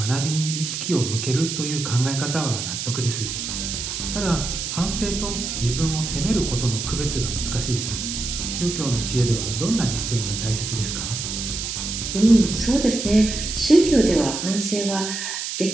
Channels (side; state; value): right; noise; hiss, 4 dB below the sound